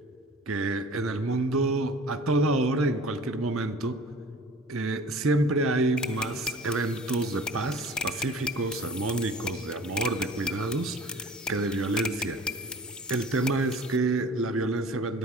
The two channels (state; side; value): normal; both; correlation 0.44